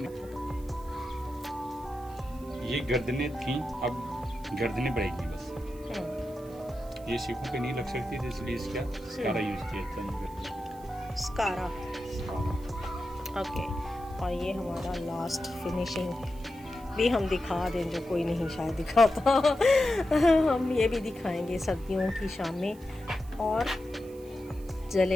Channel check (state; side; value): noise; right; hiss, 24 dB below the sound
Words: नहीं, ये गर्दनें थी, अब गर्दनें बढ़ेगी बस। ये सीखों पे नहीं लग सकती थी, इसलिए इसका स्कारा यूज किया था। स्कारा, ओके। और ये हमारा लास्ट फिनिशिंग भी हम दिखा दें, जो कोई नहीं शायद दिखाता। हम ये भी दिखाएंगे सर्दियों की शामें और